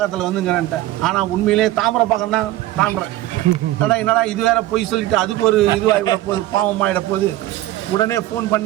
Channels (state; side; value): quieter; left; 15.7 dB